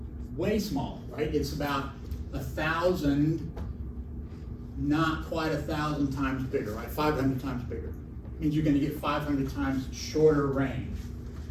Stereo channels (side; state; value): both; identical; correlation 1.00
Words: Way small, right? It's about 1,000, not quite 1,000 times bigger, right? 500 times bigger. Means you're going to get 500 times shorter range.